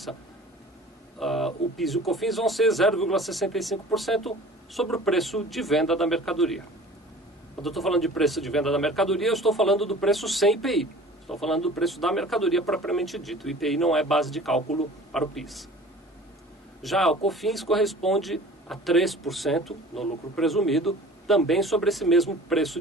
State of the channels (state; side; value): normal; both; correlation 0.44